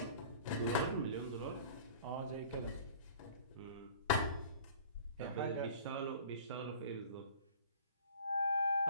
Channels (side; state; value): both; inverted; correlation -0.45